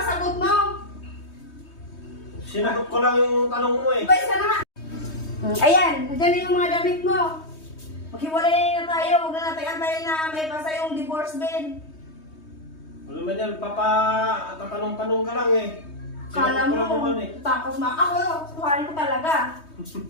sagot mo. Sinagot ko lang yung tanong mo eh. Lumayas ka na nga. Ayan, nandiyan na yung mga damit mo. Maghiwalay na tayo, huwag na natin antayin na may pasa yung divorce bill. Wala man yan, tatanong-tanong ka lang eh. Kala Sinagot ko lang mo, naman eh. tapos ako, tuharin ko talaga.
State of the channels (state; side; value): late; right; 3.2 ms